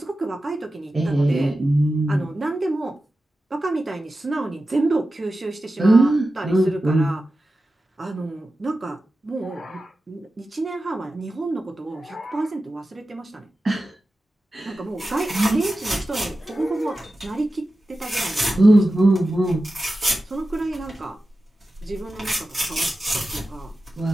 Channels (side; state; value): both; normal; correlation 0.93